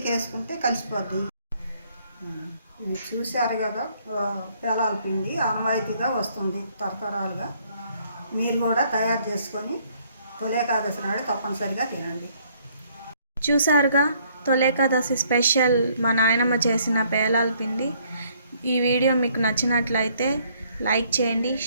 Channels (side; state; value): both; inverted; correlation -0.65